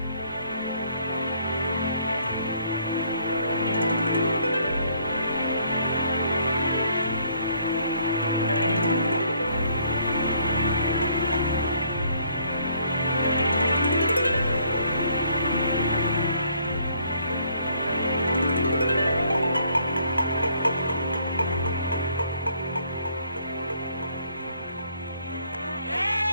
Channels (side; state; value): both; inverted; correlation -0.64